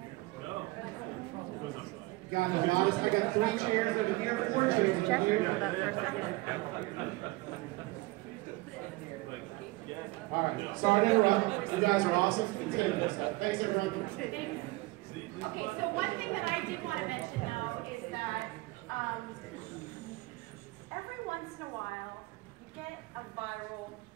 God, I got 3 chairs over here, 4 chairs over here. Hold up for a second. All right, sorry to interrupt. You guys are awesome. Continue. Thanks, everyone. Okay, so one thing that I did want to mention, though, is that every once in a while, you get a viral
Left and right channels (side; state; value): left; quieter; 21.9 dB